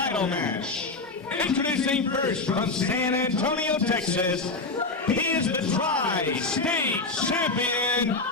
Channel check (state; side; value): quieter; right; 3.5 dB